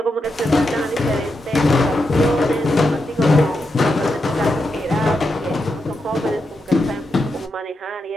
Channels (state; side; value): normal; both; correlation 0.86